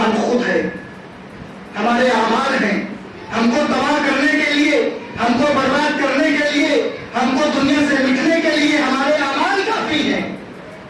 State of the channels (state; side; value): identical; both; correlation 1.00